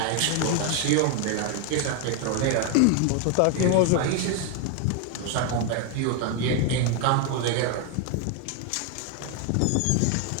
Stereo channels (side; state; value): both; different; correlation 0.01